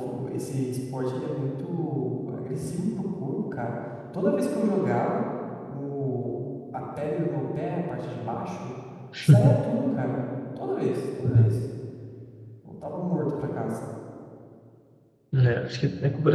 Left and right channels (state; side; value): identical; both; correlation 1.00